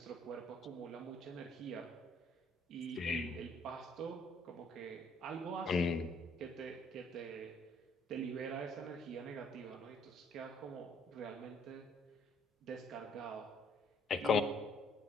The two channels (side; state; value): both; normal; correlation 0.64